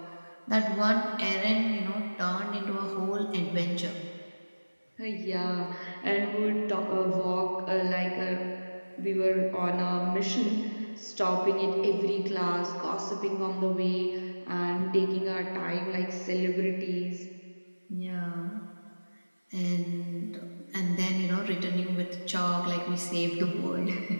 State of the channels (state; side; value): inverted; both; correlation -1.00